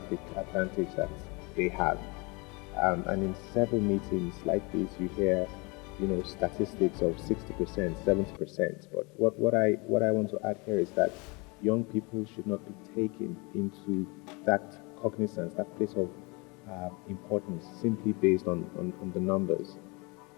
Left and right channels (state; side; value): quieter; right; 28.5 dB